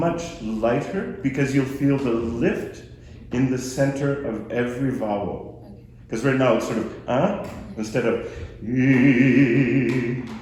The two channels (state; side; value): identical; both; correlation 1.00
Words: lighter because you'll feel the lift in the center of every vowel. Because right now it's sort of instead of